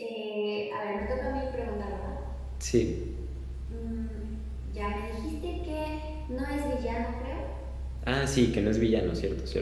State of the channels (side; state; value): both; identical; correlation 1.00